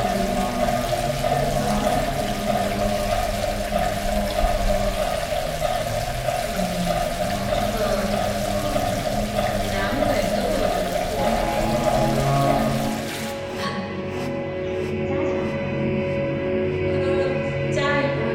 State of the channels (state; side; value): identical; both; correlation 1.00